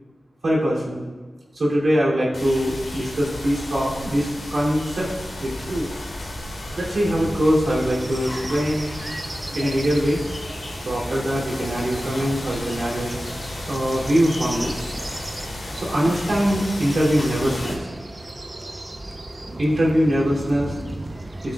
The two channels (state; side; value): normal; both; correlation 0.95